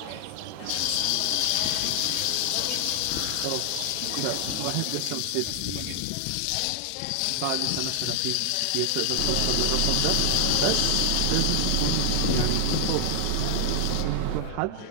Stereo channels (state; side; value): different; both; correlation 0.00